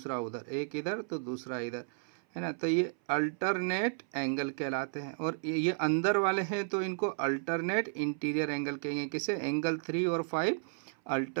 उधर, एक इधर तो दूसरा इधर, है ना। तो ये अल्टरनेट एंगल कहलाते हैं। और ये अंदर वाले हैं तो इनको अल्टरनेट इंटीरियर एंगल कहेंगे। किसे? एंगल 3 और 5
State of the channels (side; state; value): left; silent; 56 dB below the other